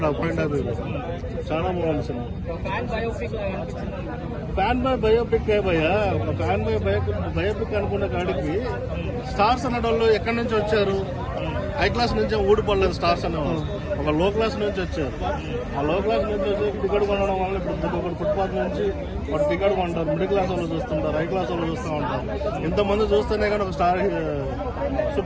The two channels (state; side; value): identical; both; correlation 1.00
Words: ఆ పాయింట్ ఆఫ్ వ్యూ చాలా బాగుంది సినిమా. ఫ్యాన్ బై బయోపిక్ భయ్యా, ఒక ఫ్యాన్ బై బయోపిక్ అనుకునే కాడికి స్టార్స్ అనేటోళ్ళు ఎక్కడి నుంచి వచ్చారు? హై క్లాస్ నుంచి ఊడిపడలేదు స్టార్స్ అనేవాళ్ళు, ఒక లో క్లాస్ నుంచి వచ్చారు. ఆ లో క్లాస్ నుంచి వచ్చి టికెట్ కొనడం వల్ల ఇప్పుడు ఒకటి ఫుట్పాత్ నుంచి ఒక టికెట్ కొంటారు, మిడిల్ క్లాస్ వాళ్ళు చూస్తుంటారు, హై క్లాస్ వాళ్ళు చూస్తూ ఉంటారు. ఇంతమంది చూస్తేనే కానీ ఒక స్టార్